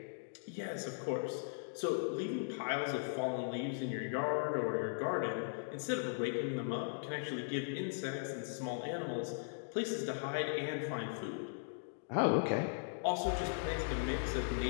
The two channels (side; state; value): right; silent; digital silence